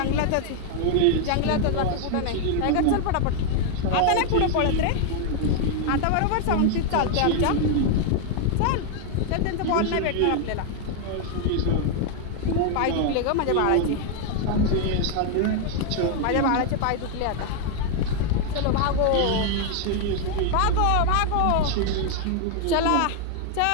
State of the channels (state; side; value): different; both; correlation 0.00